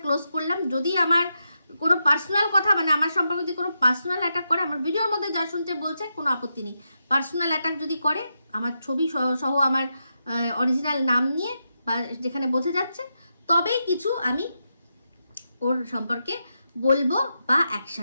ক্লোজ করলাম। যদি আমার কোনো পার্সোনাল কথা মানে আমার সম্পর্কে যদি কোনো পার্সোনাল অ্যাটাক করে, আমার ভিডিওর মধ্যে যা শুনতে বলছে কোনো আপত্তি নেই। পার্সোনাল অ্যাটাক যদি করে আমার ছবি সহ আমার অরিজিনাল নাম নিয়ে বা যেখানে বোঝা যাচ্ছে, তবেই কিছু আমি ওর সম্পর্কে বলবো বা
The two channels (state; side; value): inverted; both; correlation -0.86